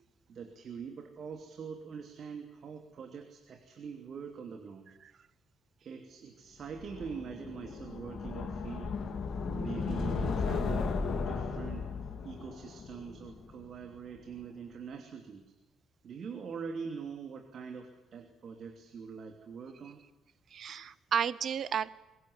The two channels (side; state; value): both; normal; correlation 0.73